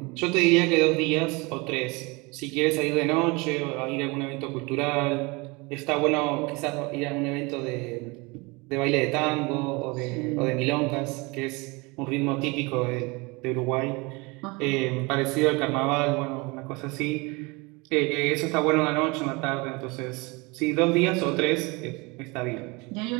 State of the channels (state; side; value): quieter; left; 26.3 dB